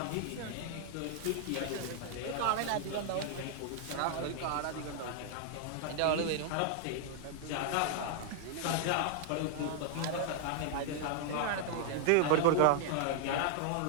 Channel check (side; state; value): both; different; correlation 0.00